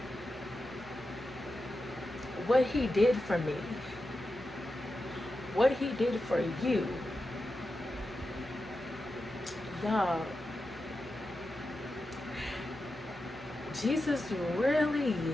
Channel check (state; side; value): normal; both; correlation 0.90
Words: what He did for me, what He did for you, y'all, Jesus really